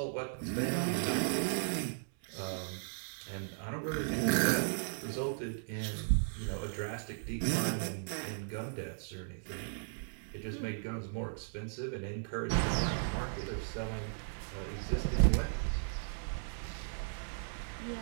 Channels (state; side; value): silent; left; 53 dB below the other